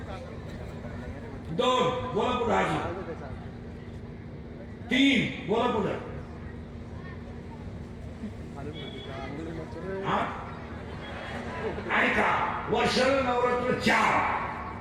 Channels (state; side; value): identical; both; correlation 1.00